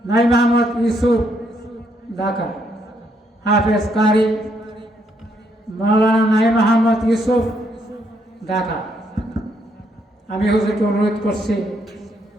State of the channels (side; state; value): both; normal; correlation 0.74